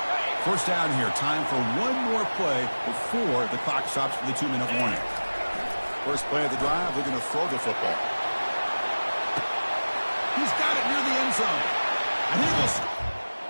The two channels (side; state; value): both; inverted; correlation -1.00